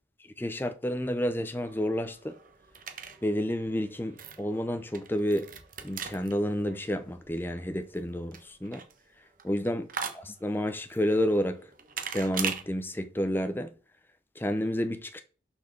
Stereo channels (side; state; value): both; normal; correlation 0.82